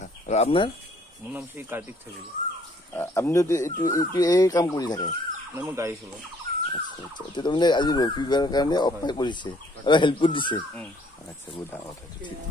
আৰু আপোনাৰ মোৰ নাম শ্ৰী কাৰ্তিক থাকিব আপুনি এইটো এই কাম কৰি থাকে মই গাড়ী চলাওঁ আচ্ছা আচ্ছা এতিয়া তাৰমানে আজি ৰবিবাৰৰ কাৰণে অফাৰ কৰিছে আৰু হেল্প কৰি দিছে আচ্ছা বহুত ডাঙৰ কথা ঠিক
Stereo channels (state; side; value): normal; both; correlation 0.62